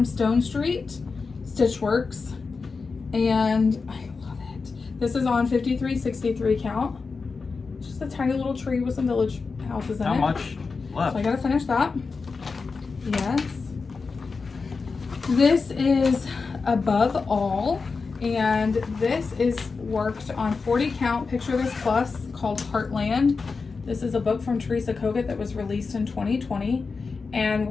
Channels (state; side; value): quieter; right; 4.6 dB